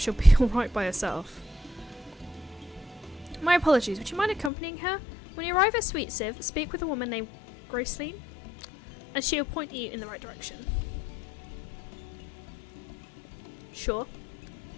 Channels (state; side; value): drops out; right; at 4.5 s